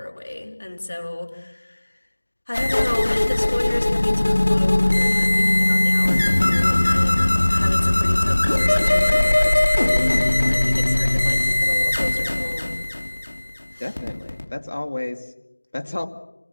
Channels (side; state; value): both; inverted; correlation -1.00